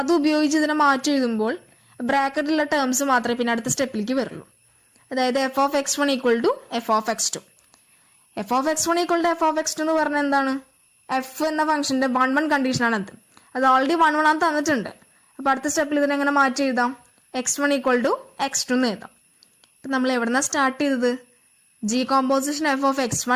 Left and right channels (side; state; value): both; identical; correlation 1.00